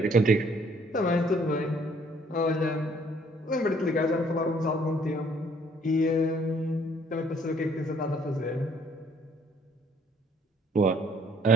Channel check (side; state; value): both; normal; correlation 0.62